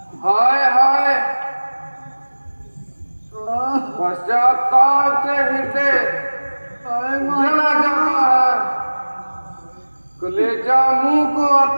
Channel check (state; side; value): inverted; both; correlation -1.00